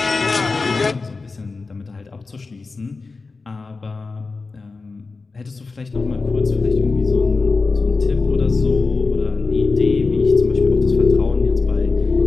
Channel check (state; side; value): quieter; right; 4.0 dB